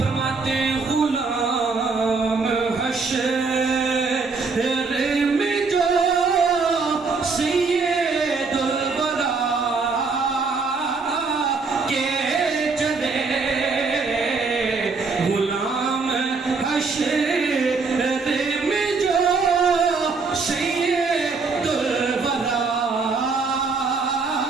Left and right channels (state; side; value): quieter; left; 4.4 dB